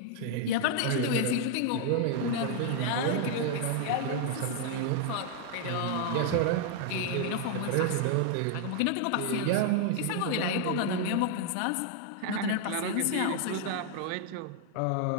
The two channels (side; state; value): both; different; correlation 0.00